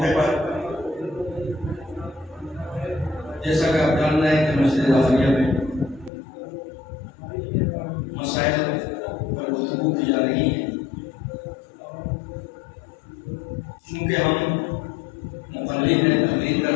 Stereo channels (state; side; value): drops out; right; at 6.1 s